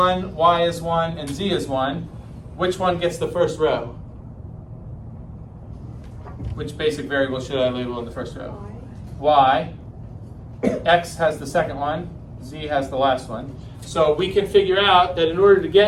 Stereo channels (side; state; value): both; identical; correlation 1.00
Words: Y is 1, and Z is 1. Which one gets the first row? Which basic variable should I label in the first row? Y. X has the second one. Z has the last one. So we can figure out that in order to